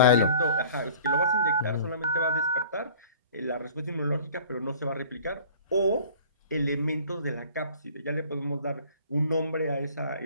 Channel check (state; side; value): inverted; both; correlation -0.48